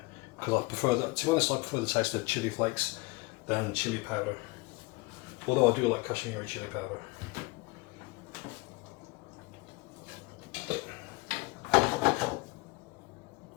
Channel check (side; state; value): right; quieter; 24.9 dB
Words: because I prefer that, to be honest, I prefer the taste of chili flakes than chili powder, although I do like Kashmiri chili powder.